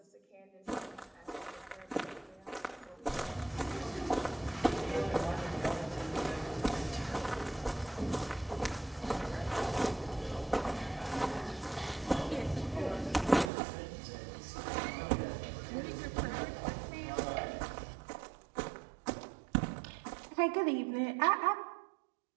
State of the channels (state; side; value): drops out; left; at 13.5 s